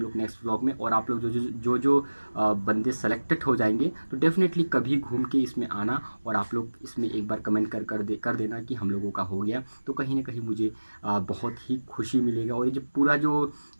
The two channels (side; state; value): both; inverted; correlation -1.00